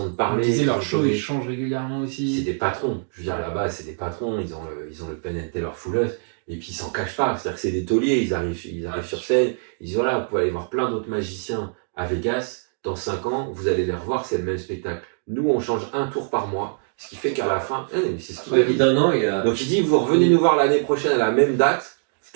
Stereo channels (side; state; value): left; silent; digital silence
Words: de parler. Ils disaient leur show, ils changent régulièrement aussi. C'est des patrons. Je veux dire, là-bas, c'est des patrons. Ils ont le Penn & Teller Full Us. Et puis ils s'en cachent pas. C'est-à-dire que c'est des tauliers. Ils arrivent sur scène. Ils disent voilà, vous pouvez aller voir plein d'autres magiciens à Vegas. Dans 5 ans, vous allez les revoir, c'est le même spectacle. Nous, on change un tour par mois. Ce qui fait qu'à la fin, c'est ce qu'il dit. Donc il dit, vous revenez nous voir l'année prochaine à la même date,